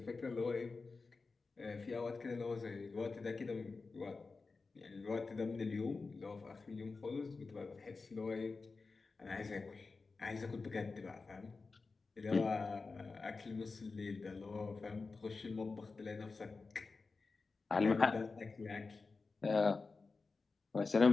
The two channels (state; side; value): quieter; right; 4.1 dB